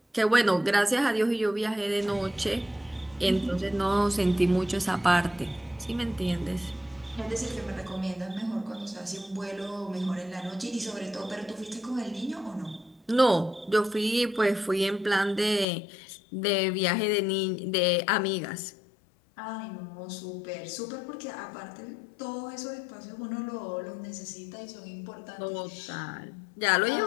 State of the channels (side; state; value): right; drops out; at 15.7 s